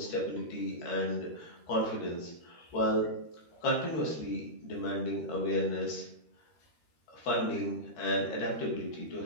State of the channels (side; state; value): right; late; 13 ms